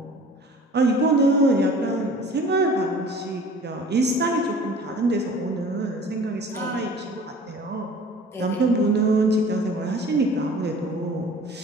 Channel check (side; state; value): both; normal; correlation 0.46